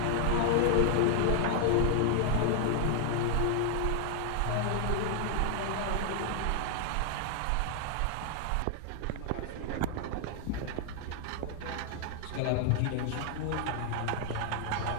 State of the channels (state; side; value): different; both; correlation 0.00